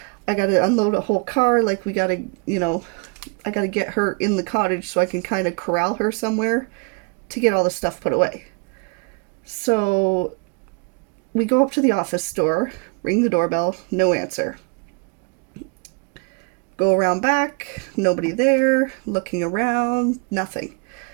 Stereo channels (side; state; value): left; quieter; 34.4 dB